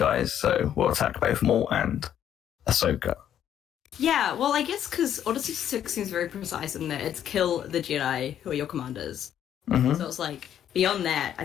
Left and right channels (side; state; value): right; quieter; 10.1 dB